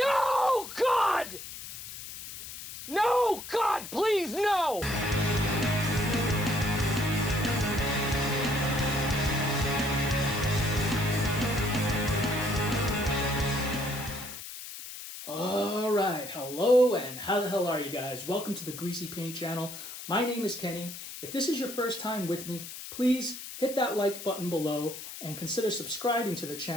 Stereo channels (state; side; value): noise; left; hiss, 11 dB below the sound